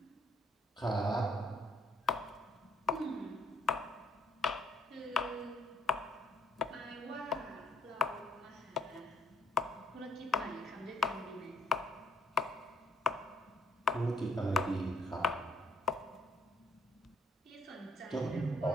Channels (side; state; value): both; normal; correlation 0.70